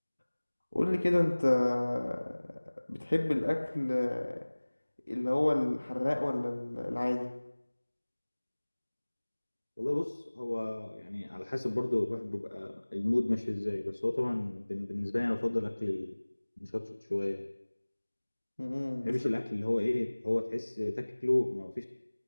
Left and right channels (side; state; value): both; inverted; correlation -1.00